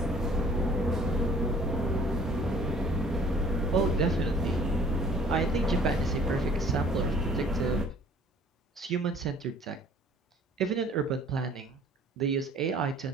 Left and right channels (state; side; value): normal; both; correlation 0.54